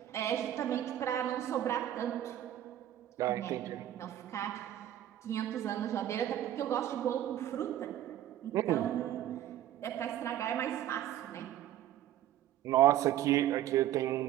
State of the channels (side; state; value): left; quieter; 12.3 dB